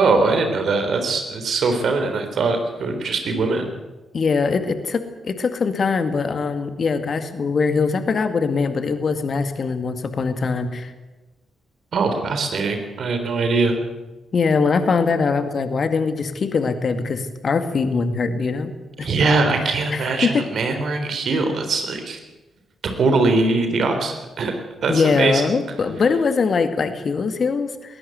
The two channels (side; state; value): both; normal; correlation 0.78